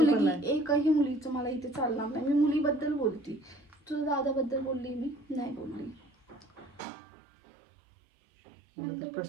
एकही मुलीचं मला इथे चालणार नाही. मी मुलीबद्दल बोलते. तुझ्या दादाबद्दल बोलली मी नाही बोलली.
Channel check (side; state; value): left; drops out; at 6.8 s